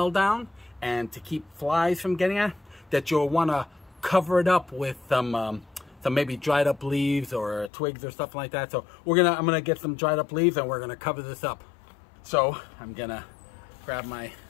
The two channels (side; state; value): right; drops out; at 7.7 s